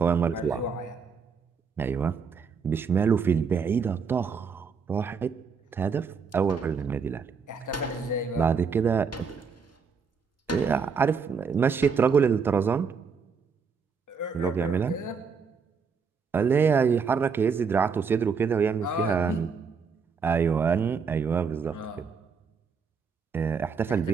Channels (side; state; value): left; quieter; 5.7 dB